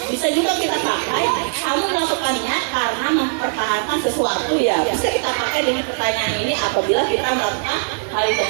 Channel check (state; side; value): silent; left; digital silence